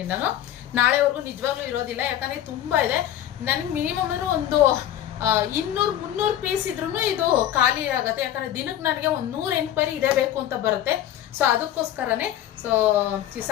ನಾನು, ನಾಳೆವರೆಗೂ ನಿಜವಾಗ್ಲೂ ಇರೋದಿಲ್ಲ. ಯಾಕಂದ್ರೆ ತುಂಬಾ ಇದೆ. ನನ್ಗೆ ಮಿನಿಮಮ್ ಅಂದ್ರೆ ಒಂದು 200-300 ಪೀಸ್ ಇದ್ರೂ ಇದು ಖಾಲಿ ಆಗುತ್ತೆ. ಯಾಕಂದ್ರೆ ದಿನಕ್ಕೆ ನನಗೆ ಒಂದು 100 ಎಂಕ್ವೈರಿ ಇದೇ ಬೇಕು ಅಂತ ಬರುತ್ತೆ. ಸೊ ಅದಕ್ಕೋಸ್ಕರನೇ ಸೊ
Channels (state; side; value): quieter; right; 11.7 dB